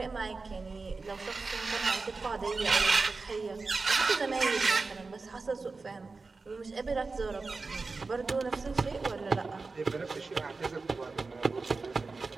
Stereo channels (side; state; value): left; quieter; 4.0 dB